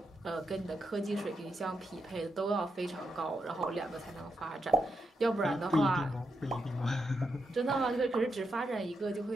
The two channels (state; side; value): normal; both; correlation 0.83